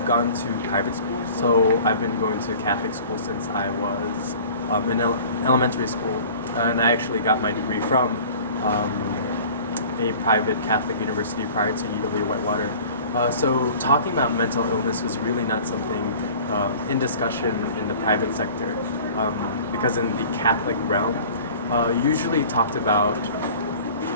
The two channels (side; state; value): both; inverted; correlation -0.45